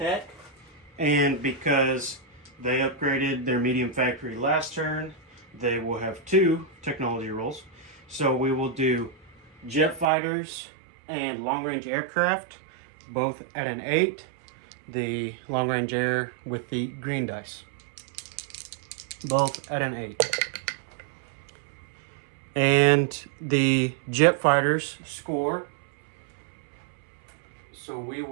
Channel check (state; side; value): drops out; left; at 10.1 s